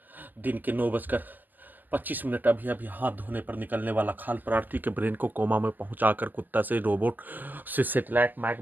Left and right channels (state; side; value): late; left; 0.086 ms